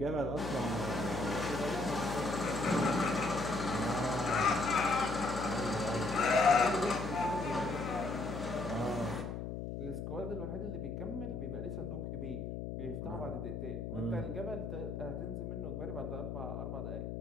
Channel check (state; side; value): noise; left; hum, 5 dB below the sound